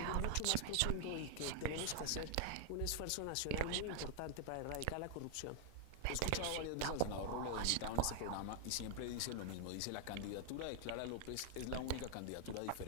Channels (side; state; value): both; different; correlation 0.00